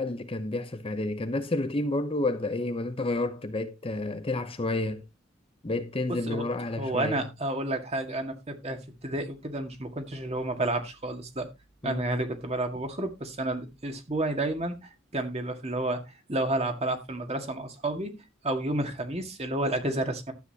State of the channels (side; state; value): both; normal; correlation 0.45